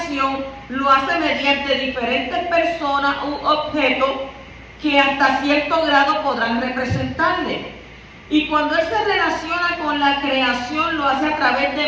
lo hace mediante diferentes personas u objetos que hasta cierto grado podrán representarle. Y cuando Él se relaciona con la creación, lo hace a través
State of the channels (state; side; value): identical; both; correlation 1.00